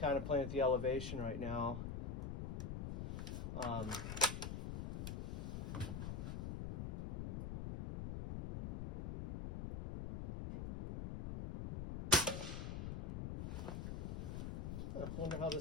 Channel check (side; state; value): left; noise; rumble, 3 dB below the sound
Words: of playing with the elevation right now. I wonder how